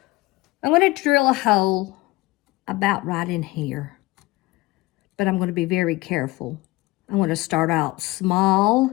I'm going to drill a hole about right in here. But I'm going to be very careful. I'm going to start out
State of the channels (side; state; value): right; quieter; 20.4 dB